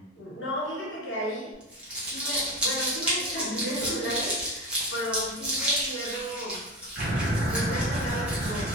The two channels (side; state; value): both; normal; correlation 0.23